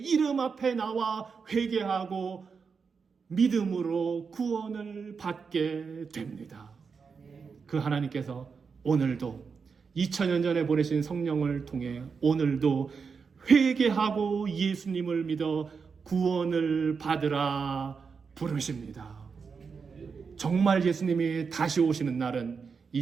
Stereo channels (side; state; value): left; quieter; 5.5 dB